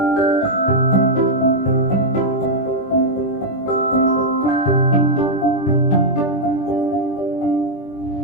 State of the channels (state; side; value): late; right; 20 ms